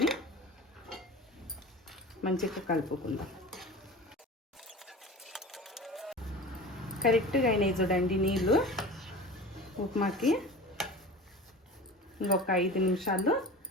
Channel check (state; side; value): normal; both; correlation 0.36